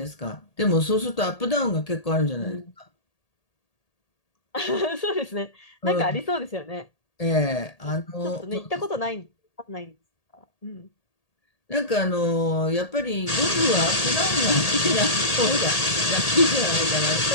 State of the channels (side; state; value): right; late; 1.8 ms